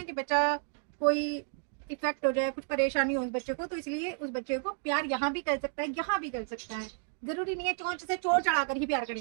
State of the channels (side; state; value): left; silent; 57 dB below the other